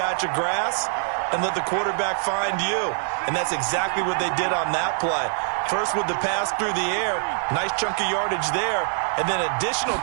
of grass and let the quarterback find you. And that's exactly what they did on that play. First with the pass through the air, nice chunk of yardage there, and then additional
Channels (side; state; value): left; silent; 63 dB below the other